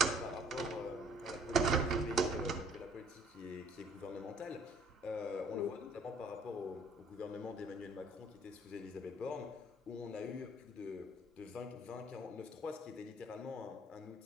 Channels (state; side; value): normal; both; correlation 0.59